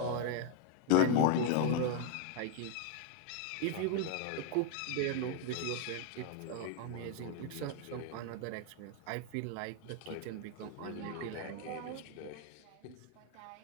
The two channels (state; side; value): different; both; correlation 0.00